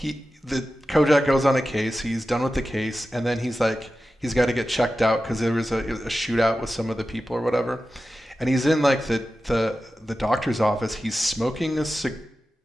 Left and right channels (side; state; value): both; normal; correlation 0.93